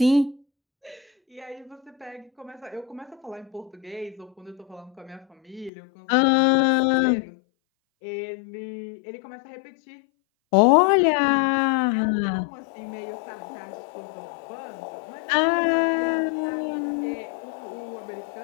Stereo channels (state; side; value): drops out; right; at 5.7 s